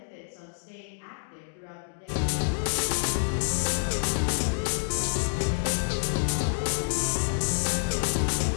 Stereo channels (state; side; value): silent; right; 59 dB below the other